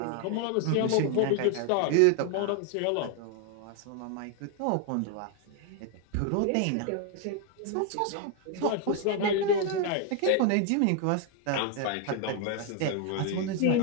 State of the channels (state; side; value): different; both; correlation 0.00